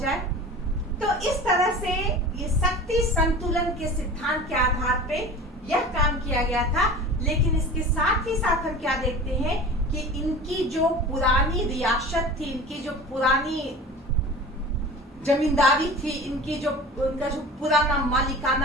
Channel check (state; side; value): normal; both; correlation 0.36